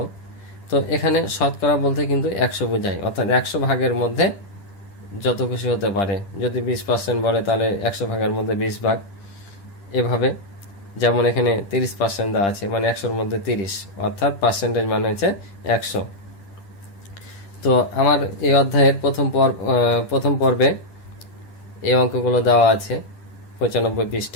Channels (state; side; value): late; right; 10 ms